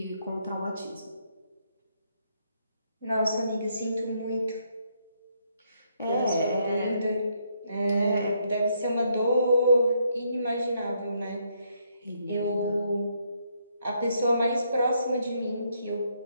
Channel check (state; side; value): inverted; both; correlation -0.74